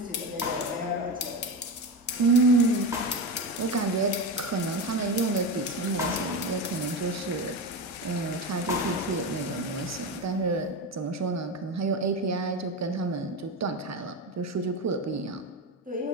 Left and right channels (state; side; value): normal; both; correlation 0.19